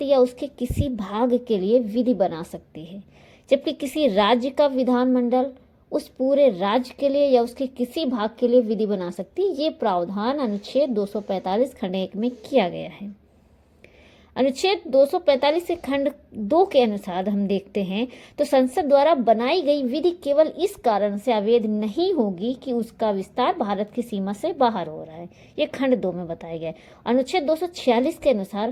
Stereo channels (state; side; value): identical; both; correlation 1.00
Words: या उसके किसी भाग के लिए विधि बना सकती है, जबकि किसी राज्य का विधानमंडल उस पूरे राज्य के लिए या उसके किसी भाग के लिए विधि बना सकती है। ये प्रावधान अनुच्छेद 245 खंड 1 में किया गया है। अनुच्छेद 245 से खंड 2 के अनुसार हम देखते हैं तो संसद द्वारा बनाई गई विधि केवल इस कारण से अवैध नहीं होगी कि उसका विस्तार भारत की सीमा से बाहर हो रहा है। ये खंड 2 में बताया गया है। अनुच्छेद 246 के